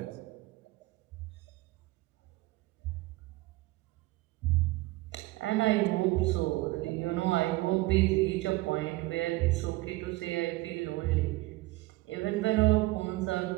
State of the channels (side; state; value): left; quieter; 19.9 dB